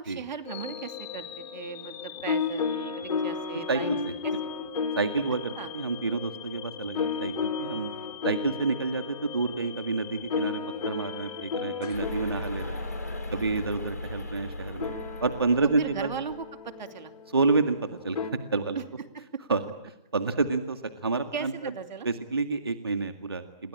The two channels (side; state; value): both; inverted; correlation -0.52